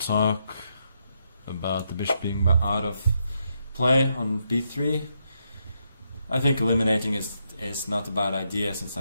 about the bishop being out of play on b3, I think eliminating is not a bad idea, since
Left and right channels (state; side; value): inverted; both; correlation -0.80